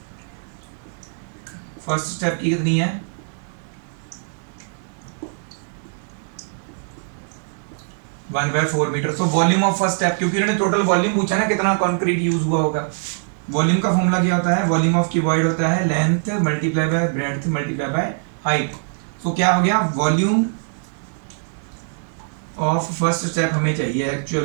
first step की कितनी है, 1/4 metre. So volume of first step, क्योंकि उन्होंने टोटल वॉल्यूम पूछा ना कितना कंक्रीट यूज हुआ होगा। वॉल्यूम का फॉर्मूला क्या होता है, वॉल्यूम ऑफ क्यूबॉइड होता है length multiply by breadth multiply by height. So क्या हो गया, वॉल्यूम ऑफ फर्स्ट स्टेप हमें चाहिए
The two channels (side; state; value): left; silent; 64 dB below the other